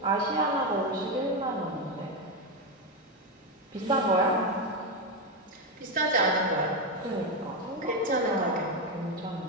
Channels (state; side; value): normal; both; correlation 0.09